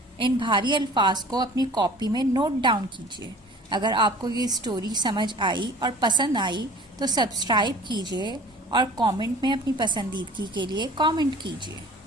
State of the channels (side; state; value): both; normal; correlation 0.46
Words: इन भारी अल्फाज को अपनी कॉपी में नोट डाउन कीजिए। अगर आपको ये स्टोरी समझ आई और पसंद आई तो सब्सक्राइब कीजिए और कमेंट में अपनी पसंदीदगी के लिए कमेंट कीजिए।